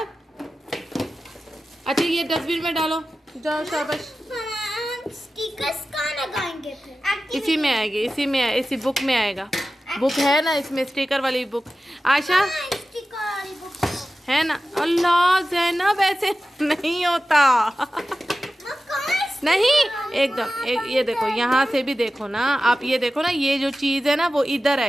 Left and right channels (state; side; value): normal; both; correlation 0.94